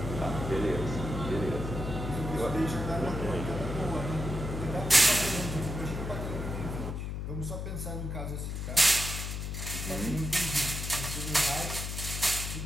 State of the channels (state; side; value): noise; left; hum, 4 dB below the sound